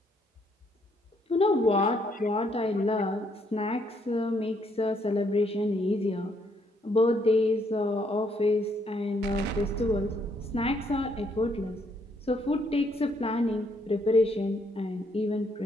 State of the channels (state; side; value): normal; both; correlation 0.71